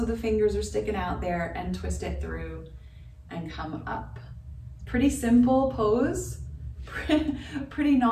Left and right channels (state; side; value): identical; both; correlation 1.00